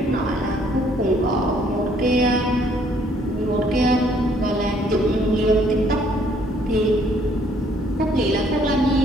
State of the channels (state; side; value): normal; both; correlation 0.64